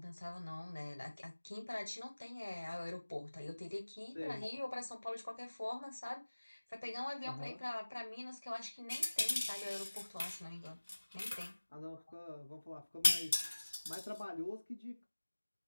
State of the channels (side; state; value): both; inverted; correlation -1.00